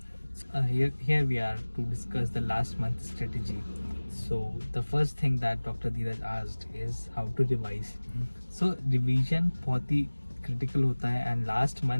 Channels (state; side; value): inverted; both; correlation -1.00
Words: Here we are to discuss the last month strategy. So the first thing that Dr. Dheeraj asked is how to revise. So revision बहुत ही critical होता है and last